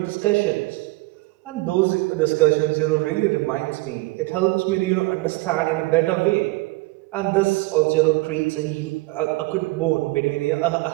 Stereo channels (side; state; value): left; quieter; 22.2 dB